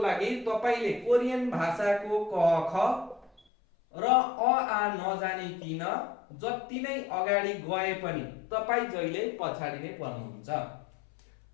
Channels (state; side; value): drops out; right; at 3.4 s